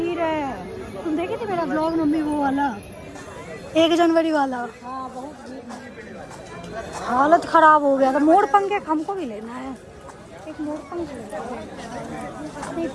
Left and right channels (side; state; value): both; identical; correlation 1.00